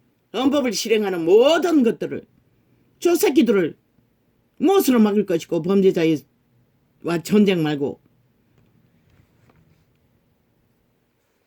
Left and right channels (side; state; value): both; identical; correlation 1.00